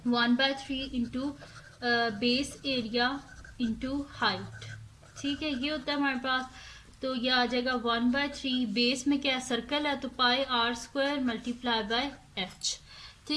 1/3 into base area into height. ठीक है, ये होता है हमारे पास। तो ये आ जाएगा 1/3, बेस में क्या सर्कल है तो pi r square multiply by H.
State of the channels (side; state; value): both; identical; correlation 1.00